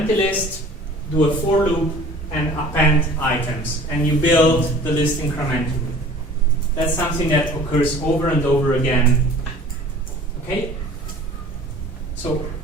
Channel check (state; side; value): normal; both; correlation 0.46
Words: list, do a for loop, and append items. And you build the list incrementally. That's something that occurs over and over again. Okay? So